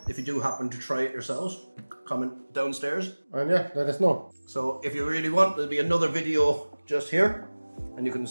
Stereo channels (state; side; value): inverted; both; correlation -1.00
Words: if you do happen to try it yourselves, comment downstairs. And yeah, let us know. So if you really want, there'll be another video just here, and you can